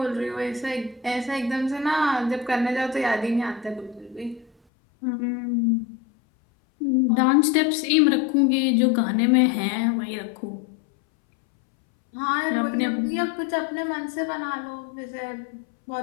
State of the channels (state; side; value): drops out; right; at 4.5 s